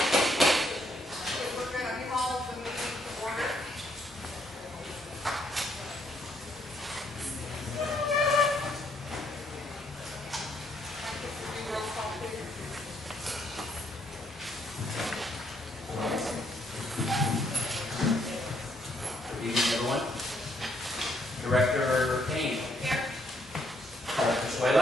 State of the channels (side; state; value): both; normal; correlation 0.71